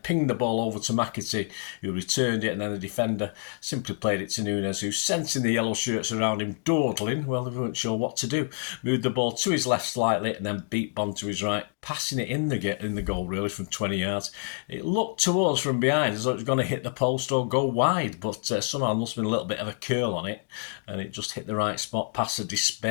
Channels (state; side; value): silent; right; 60 dB below the other